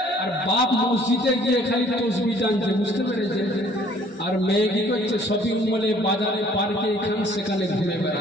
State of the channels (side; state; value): both; normal; correlation 0.57